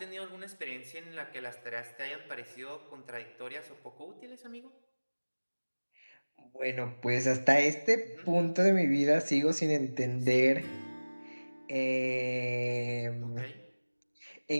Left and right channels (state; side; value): inverted; both; correlation -1.00